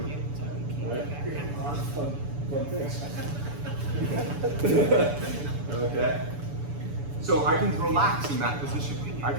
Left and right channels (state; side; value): late; left; 7.0 ms